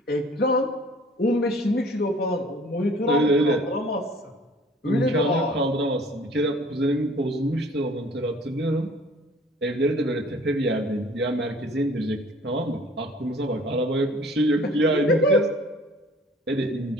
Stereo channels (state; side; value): normal; both; correlation 0.52